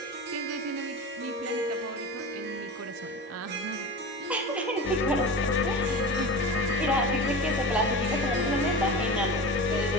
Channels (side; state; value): both; normal; correlation 0.30